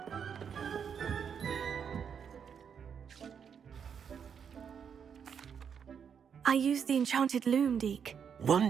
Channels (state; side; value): quieter; left; 7.3 dB